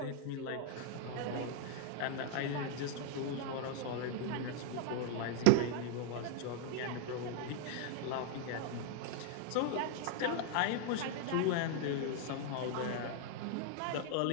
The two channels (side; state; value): both; different; correlation 0.00